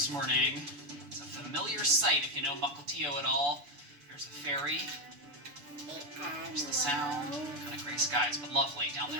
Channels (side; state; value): left; late; 7.0 ms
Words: morning. It's a familiar sight if you know Mukilteo at all. Here's the ferry. There's the sound. Kind of gray skies, but lovely down there